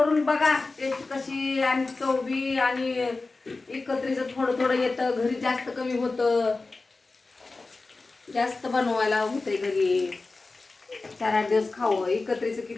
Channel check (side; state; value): right; quieter; 3.6 dB